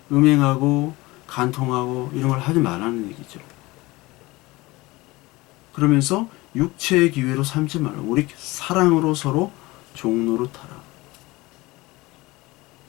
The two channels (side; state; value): right; quieter; 21.2 dB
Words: 음행하고 간통하고 이런 걸 하지 말라는 얘기죠. 그러면서 육체의 기회로 삼지 말라. 우리 사랑으로 서로 종노릇하라.